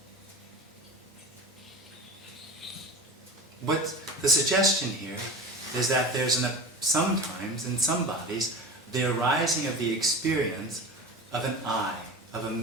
What's the suggestion here is that there's sometimes in some bodies the arising of the experience of an I, of a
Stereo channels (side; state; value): both; normal; correlation 0.32